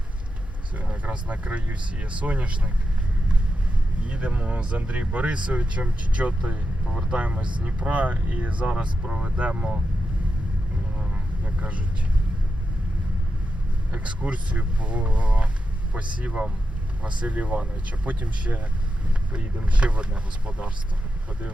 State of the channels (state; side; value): normal; both; correlation 0.88